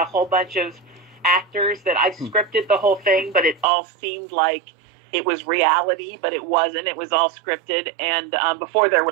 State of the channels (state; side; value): drops out; left; at 3.7 s